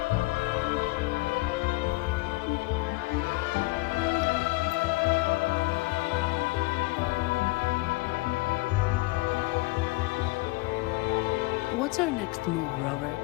What's our next move, Rover?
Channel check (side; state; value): right; quieter; 22.9 dB